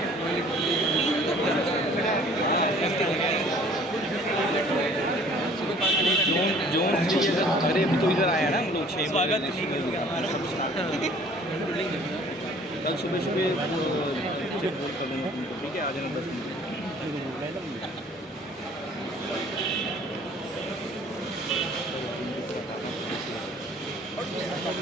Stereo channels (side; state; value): both; normal; correlation 0.53